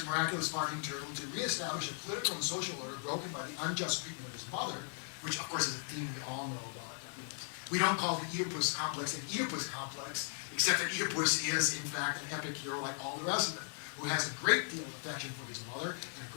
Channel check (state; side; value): silent; right; 53 dB below the other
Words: miraculous farting turtle to reestablish a political and social order broken by the unjust treatment of his mother, which of course is a theme we all know about. We don't call the Oedipus complex an Oedipus complex, except that Oedipus is, in fact, an epic hero like all the rest of them, who has a great deal of affection for his mother and a